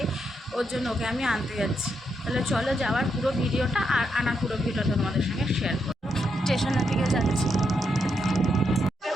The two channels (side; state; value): both; normal; correlation 0.81